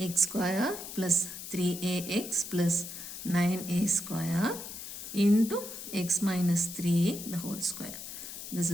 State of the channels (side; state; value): left; noise; hiss, 9 dB below the sound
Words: X square plus 3ax plus 9a square into x minus 3a the whole square. This